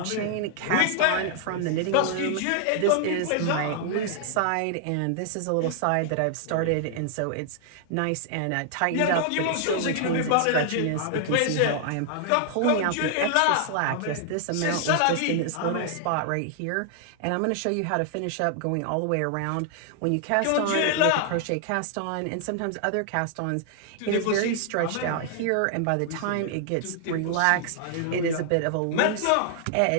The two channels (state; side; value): different; both; correlation -0.01